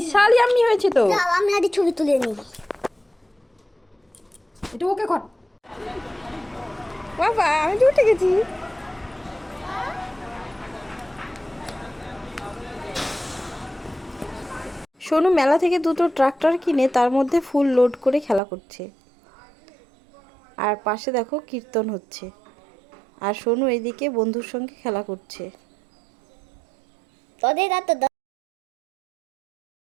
ইয়াম্মি হয়েছে তো। আমি একটা ছবি তুলে নিই। এটা ওকে কর বাবা, আমি তো উঠে গেছি। সোনু মেলা থেকে দুটো ট্রাক্টর কিনে তার মধ্যে ফুল লোড করে খেলা করছে। আর পাশে দেখো কীর্তন হচ্ছে, আর সোনু এদিকে বন্ধুর সঙ্গে খেলা করছে। তোদের তো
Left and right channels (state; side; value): drops out; left; at 18.4 s